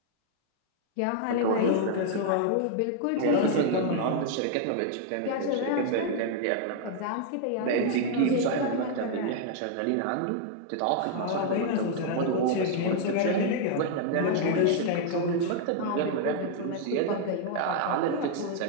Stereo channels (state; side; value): different; both; correlation 0.00